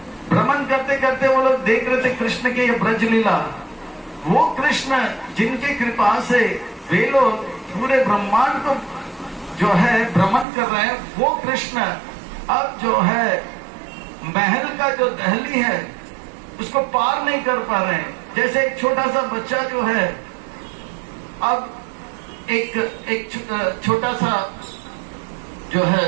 भ्रमण करते करते वो लोग देख रहे थे कृष्ण के ये ब्रज लीला। वो कृष्ण जिनकी कृपा से वे लोग पूरे ब्रह्मांड को जो है भ्रमण कर रहे हैं, वो कृष्ण अब जो है महल का जो दहली है उसको पार नहीं कर पा रहे हैं। जैसे एक छोटा सा बच्चा जो है, अब एक छोटा सा जो है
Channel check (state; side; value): drops out; left; at 10.5 s